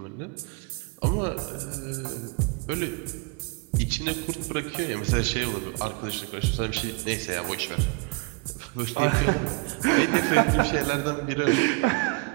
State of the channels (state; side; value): quieter; left; 28.3 dB